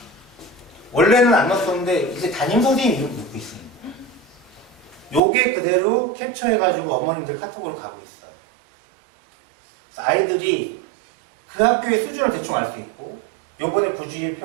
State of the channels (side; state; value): left; drops out; at 5.2 s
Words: 원래는 안 넣었었는데 이제 담임선생님 이름도 넣고 있습니다. 요게 그대로 캡처해가지고 어머님들 카톡으로 가고 있어요. 그래서 아이들이 그 학교의 수준을 대충 알 수 있고 요번에 구주입